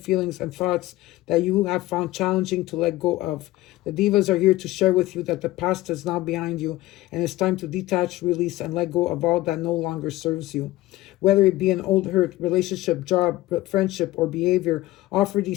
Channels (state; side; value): quieter; right; 17.3 dB